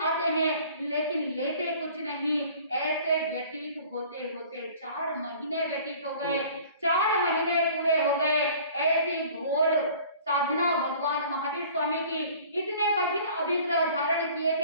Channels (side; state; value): both; inverted; correlation -0.48